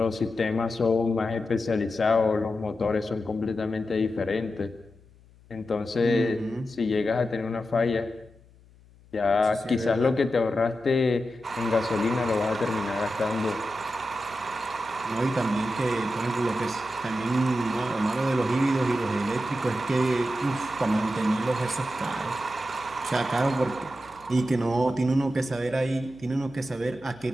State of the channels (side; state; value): left; noise; hum, 27 dB below the sound